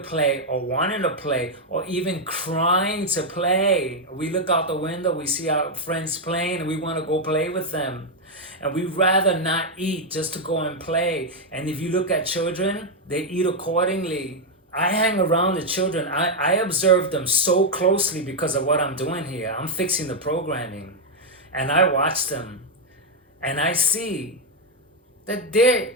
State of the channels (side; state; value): both; normal; correlation 0.01